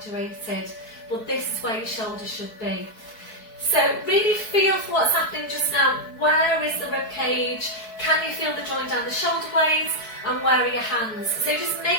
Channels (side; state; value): right; late; 4.6 ms